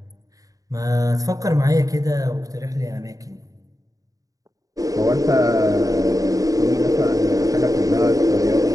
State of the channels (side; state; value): left; late; 0.17 ms